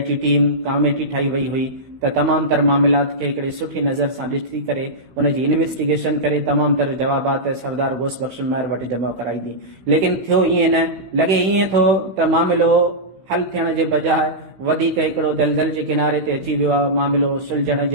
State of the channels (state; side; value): late; left; 16 ms